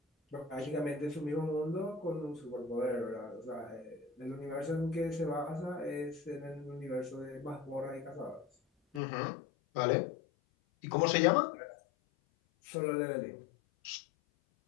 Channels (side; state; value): right; drops out; at 9.0 s